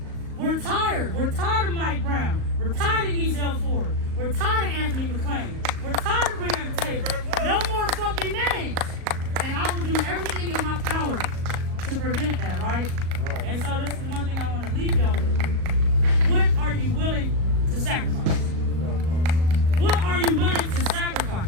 We're tired. We're tired of Mike Brown. We're tired of Ezel Ford. We're tired of Anthony McClain. We're tired of bringing the table. No more fucking names. And I will do everything in my power to prevent that, right? And so this is one thing I want to leave y'all with. What are you willing to sacrifice? What are you willing to sacrifice?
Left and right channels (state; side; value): late; left; 38 ms